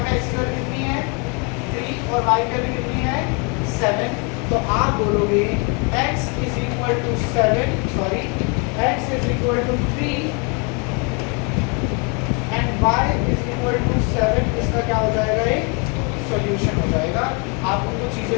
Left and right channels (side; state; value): right; quieter; 32.7 dB